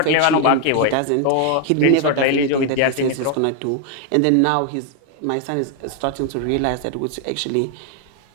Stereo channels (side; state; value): both; different; correlation 0.00